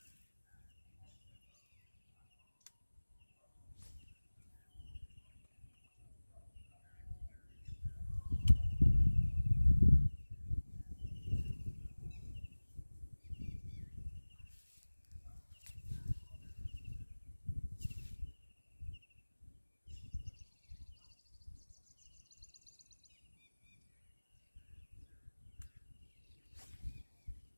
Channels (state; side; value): inverted; both; correlation -1.00